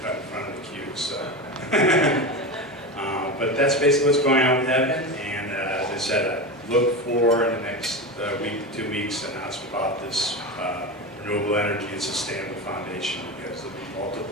cut in front of the queue. So, but that's basically what's going on with Evan. And as I said, I look for in the next week to 2 weeks an announcement about this renewable energy and sustainable foundation, because there'll be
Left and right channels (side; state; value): both; normal; correlation 0.22